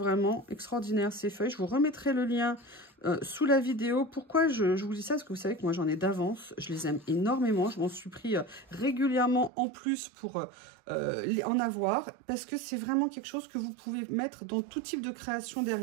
extraordinaires, ces feuilles. Je vous remettrai le lien sous la vidéo. Pourquoi je vous dis ça? Parce que vous savez que moi, j'en ai d'avance. Je les aime énormément. Je m'en suis pris régulièrement en plus pour en avoir. Parce que c'est vraiment quelque chose que vous pouvez mettre dans tout type de création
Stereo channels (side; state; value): left; drops out; at 9.5 s